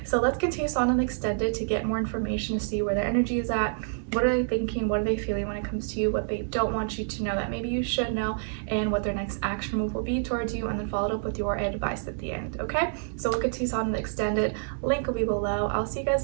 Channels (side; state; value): left; silent; digital silence